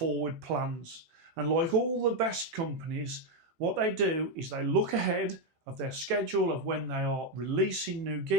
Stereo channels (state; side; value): late; left; 16 ms